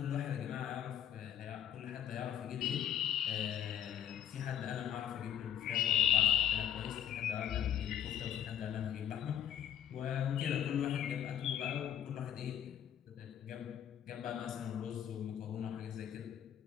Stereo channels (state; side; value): quieter; right; 10.4 dB